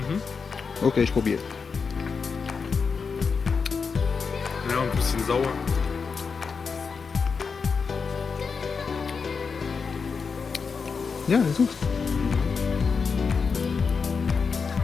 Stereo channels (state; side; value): quieter; right; 5.4 dB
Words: Okay, ich probiere. Ja, und ein bisschen sauer. Ja, süß.